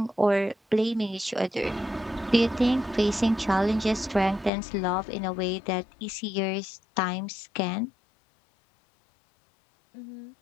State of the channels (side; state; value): right; drops out; at 4.5 s